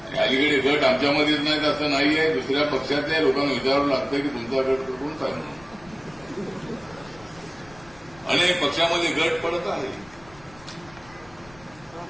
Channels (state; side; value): noise; left; rumble, 24 dB below the sound